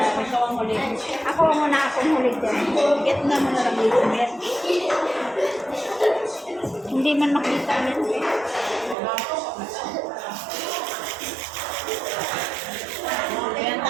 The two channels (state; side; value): drops out; left; at 9.0 s